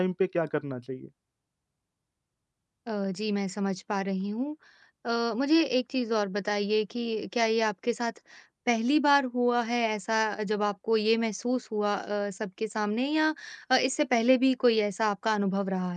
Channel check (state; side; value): identical; both; correlation 1.00